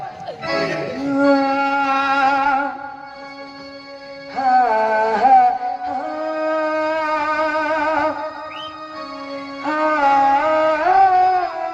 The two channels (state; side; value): identical; both; correlation 1.00